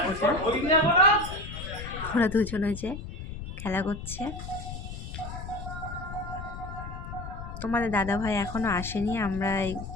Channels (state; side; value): noise; left; rumble, 9 dB below the sound